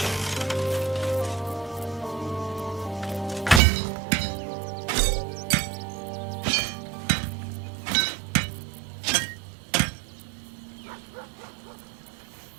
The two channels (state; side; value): drops out; left; at 3.6 s